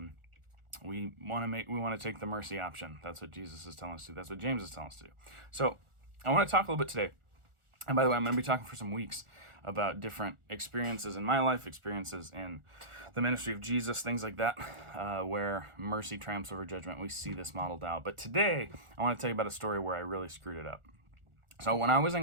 we want to take the mercy option. That's what Jesus is telling us to do. That's what James is telling us to do. So I want to talk a little bit today. And by the way, I'm going to be talking for some weeks about different experiences in my life, experiences in the ministry of Jesus, things like that, where mercy triumphs over judgment. We see this modeled out. But today, I want to tell you about a story where I really screwed it up. So when I was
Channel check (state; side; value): late; left; 1.4 ms